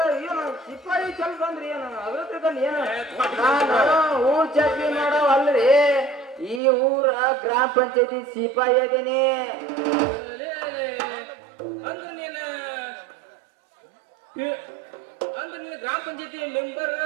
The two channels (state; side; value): drops out; left; at 6.6 s